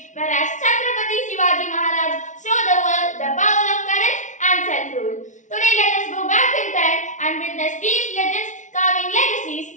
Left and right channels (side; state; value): right; late; 0.36 ms